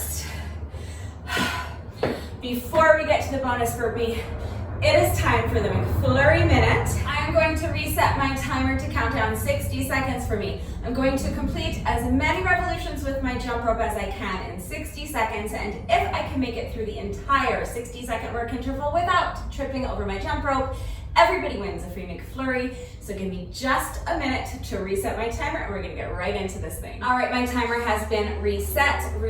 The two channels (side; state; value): both; identical; correlation 1.00